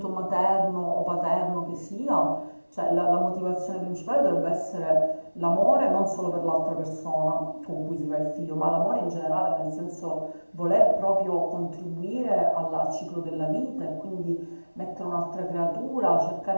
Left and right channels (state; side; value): inverted; both; correlation -1.00